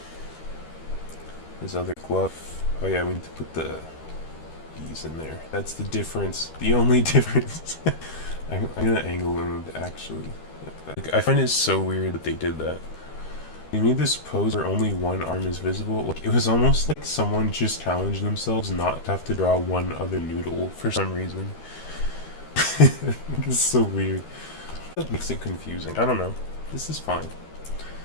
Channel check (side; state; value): right; late; 13 ms